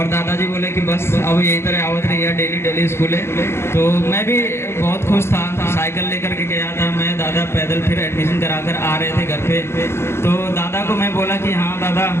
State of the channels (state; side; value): late; right; 0.12 ms